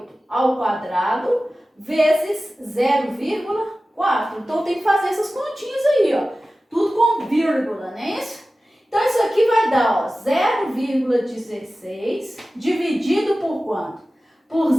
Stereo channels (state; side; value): normal; both; correlation 0.95